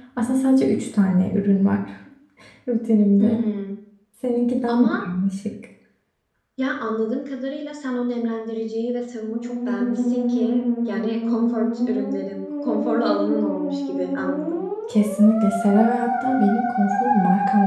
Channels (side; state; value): both; identical; correlation 1.00